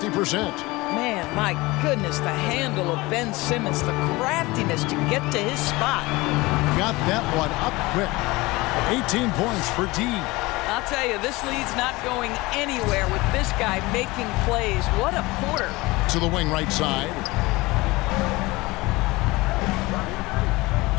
Man, my goodness, the handle of Ben Simmons, the craftiness to get to his spot. Got that one up quick. 18 points for D. I'll tell you, this lead's not going anywhere with this guy making plays. What a quarter. to the wing right side.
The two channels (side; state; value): right; quieter; 21.8 dB